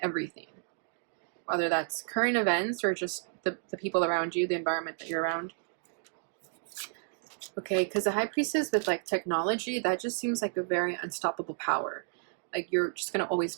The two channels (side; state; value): left; silent; digital silence